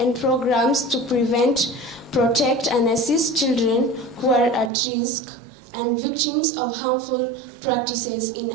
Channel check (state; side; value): drops out; left; at 4.7 s